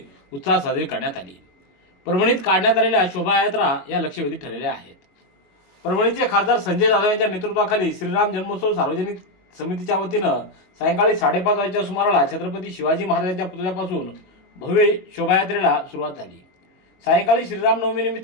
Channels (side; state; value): right; late; 22 ms